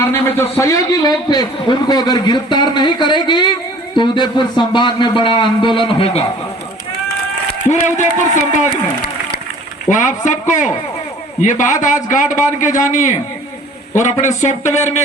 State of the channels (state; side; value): normal; both; correlation 0.50